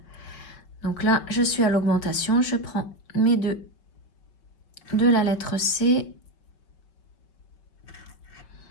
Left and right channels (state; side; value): late; right; 5.3 ms